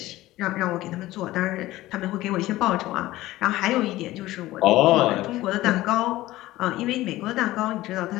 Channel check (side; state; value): right; quieter; 16.8 dB